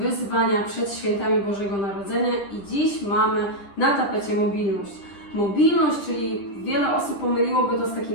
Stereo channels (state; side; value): late; right; 10 ms